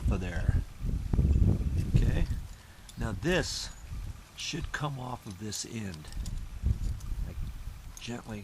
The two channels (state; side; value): identical; both; correlation 1.00